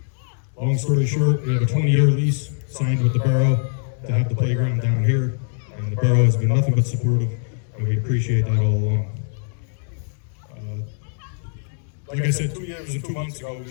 Long story short, we have a 20-year lease signed with the borough to have the playground down here. And the borough has been nothing but supportive, and we appreciate that all along. Like I said, 2 years and 2 months ago, we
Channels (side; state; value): right; silent; digital silence